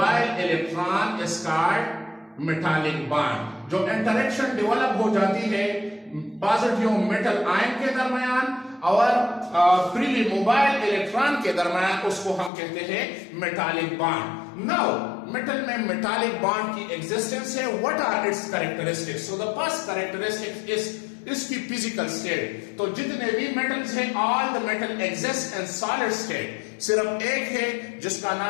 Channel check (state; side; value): drops out; right; at 12.5 s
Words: electron is called metallic bond. जो इंटरेक्शन डेवलप हो जाती है पॉजिटिव मेटल आयन के दरमियान और फ्रीली मोबाइल इलेक्ट्रॉन के दरमियान, उसको हम कहते हैं मेटालिक बॉन्ड. नाउ मेटल में मेटालिक बॉन्ड की एग्जिस्टेंस है. What are its characteristics? So the first characteristic is इसकी फिजिकल स्टेट. तो जितने भी मेटल्स हैं, all the metal exist in solid state. सिर्फ एक है जिसका